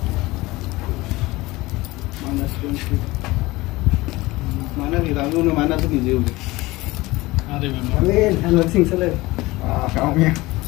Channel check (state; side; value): quieter; right; 20.4 dB